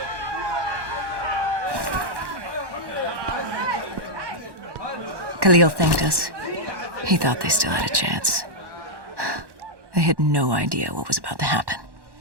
Khalil thanked us. He thought they still had a chance. They had no idea what was about to happen.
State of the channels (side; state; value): left; late; 1.1 ms